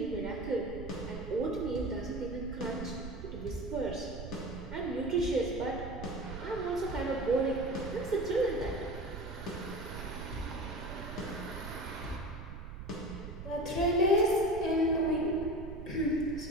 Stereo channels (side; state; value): right; noise; rumble, 9 dB below the sound